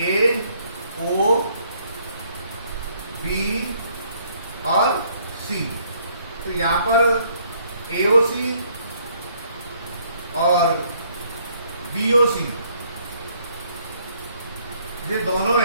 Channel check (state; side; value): inverted; both; correlation -0.65